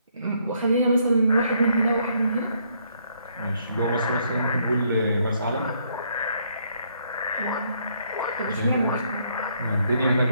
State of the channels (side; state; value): both; inverted; correlation -0.70